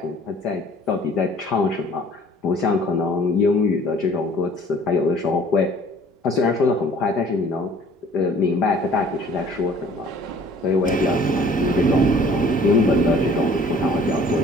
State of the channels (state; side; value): normal; both; correlation 0.52